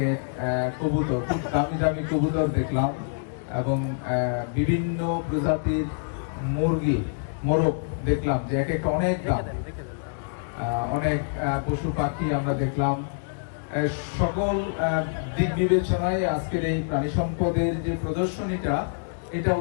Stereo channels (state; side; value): silent; right; digital silence